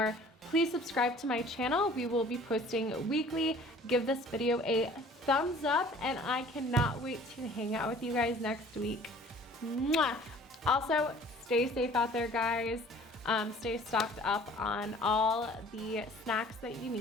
Please subscribe to my channel. We will be posting weekly. Give this video a thumbs up, and I cannot wait to hang out with you guys next week. Mwah! Also, stay safe out there, guys. Stay stocked up on all the snacks that you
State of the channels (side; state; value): both; normal; correlation 0.50